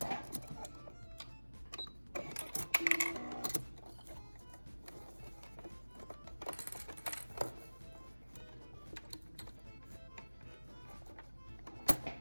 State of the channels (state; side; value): inverted; both; correlation -1.00